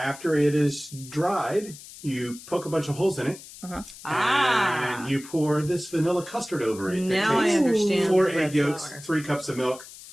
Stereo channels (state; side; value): noise; left; hiss, 17 dB below the sound